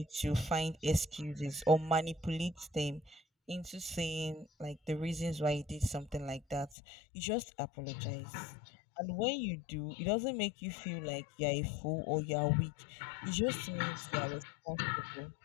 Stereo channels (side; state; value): right; drops out; at 6.8 s